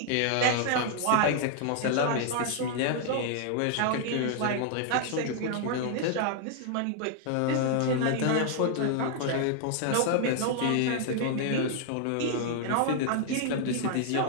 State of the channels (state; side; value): different; both; correlation 0.00